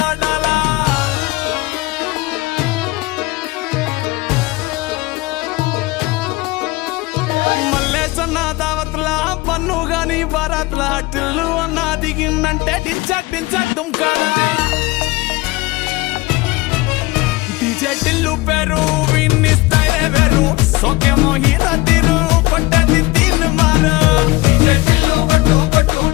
ఆడాలా మల్లేసన్న దావత్లా పన్ను గాని బారాత్లా టిల్లు అన్న దిగిందంటే టించక్ టించక్ దుంకాలా డీజే టిల్లు పేరు విన్ని స్టైలే వేరు సోకేమో హీరో తీరు కొట్టది తీన్ మారు డీజే టిల్లు కొట్టు కొట్టు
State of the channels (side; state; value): right; quieter; 21.6 dB